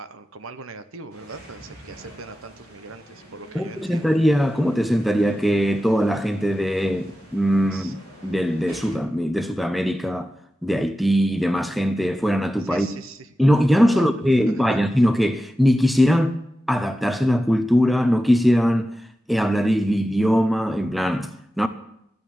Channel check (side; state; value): both; normal; correlation 0.93